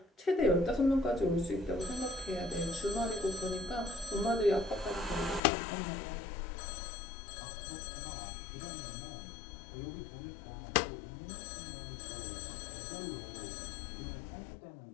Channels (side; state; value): right; drops out; at 5.4 s